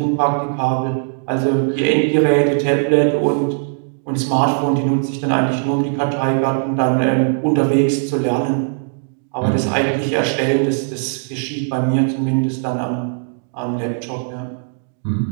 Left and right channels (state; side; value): silent; left; digital silence